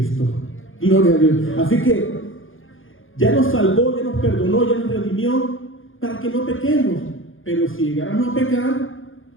Gloria a Dios. Así que ya nos salvó, ya nos perdonó, ya nos redimió para que no pequemos. Pero si llegáramos a pecar,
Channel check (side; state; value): right; late; 0.59 ms